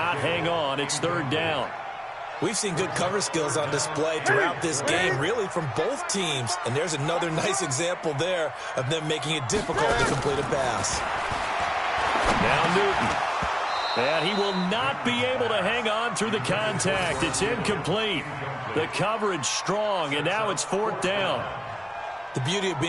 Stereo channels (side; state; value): both; identical; correlation 1.00